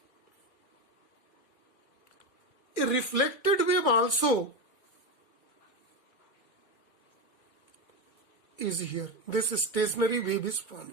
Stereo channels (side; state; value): right; late; 2.3 ms